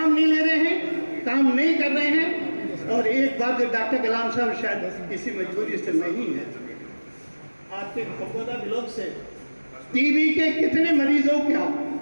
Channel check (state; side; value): inverted; both; correlation -1.00